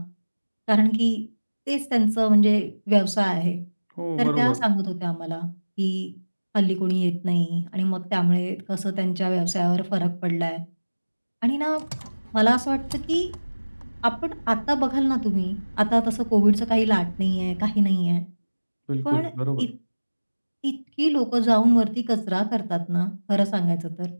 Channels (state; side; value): inverted; both; correlation -1.00